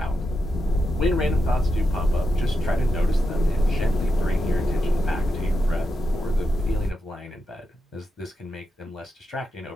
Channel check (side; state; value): both; normal; correlation 0.87